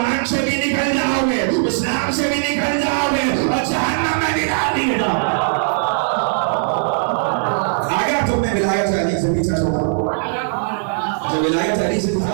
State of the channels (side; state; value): left; silent; digital silence